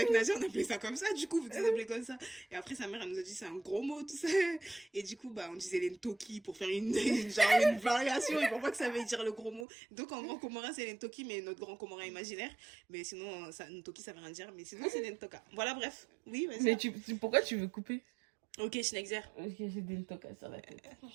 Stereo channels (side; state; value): left; drops out; at 9.7 s